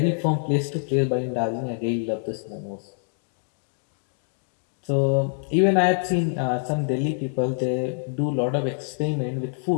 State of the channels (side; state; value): right; silent; digital silence